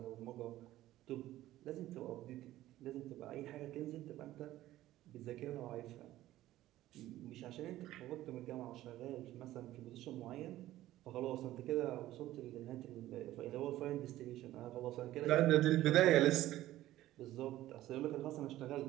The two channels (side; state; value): left; quieter; 14.8 dB